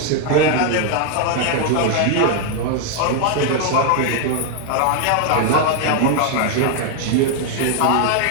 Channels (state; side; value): different; both; correlation 0.00